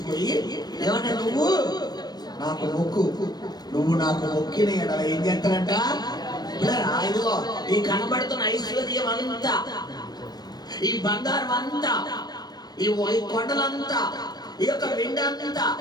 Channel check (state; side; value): late; right; 0.19 ms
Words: ఏమన్నా నువ్వు నాకు మొక్కు, నువ్వు నాకు మొక్కిన ఎడల ఏం చేస్తానంట? ఇదిగో ఈ కనబడుతున్న ఐశ్వర్యం అంతా, ఈ బంగారం అంతా, ఈ కొండలంతా, ఈ యొక్క వెండంతా,